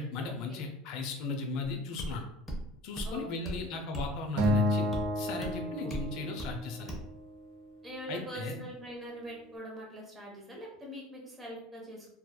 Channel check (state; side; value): normal; both; correlation 0.46